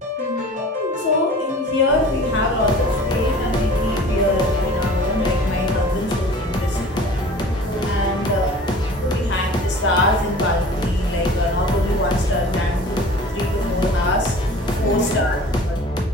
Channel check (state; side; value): normal; both; correlation 0.43